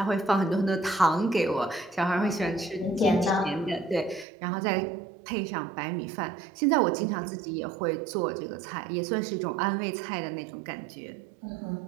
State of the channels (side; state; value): left; drops out; at 4.2 s